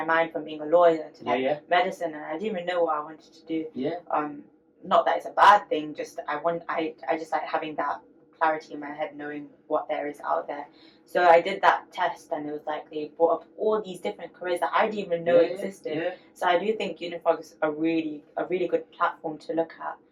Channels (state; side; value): identical; both; correlation 1.00